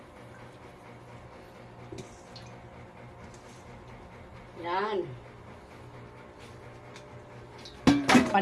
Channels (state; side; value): identical; both; correlation 1.00